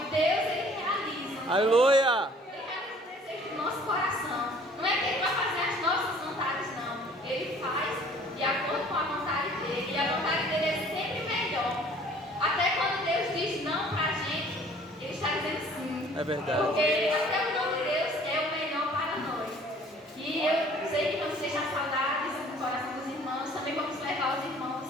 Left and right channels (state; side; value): normal; both; correlation 0.53